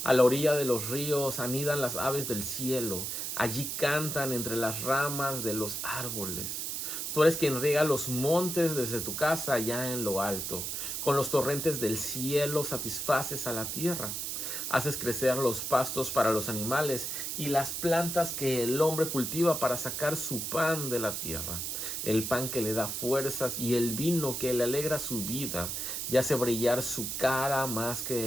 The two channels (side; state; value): right; noise; hiss, 3 dB below the sound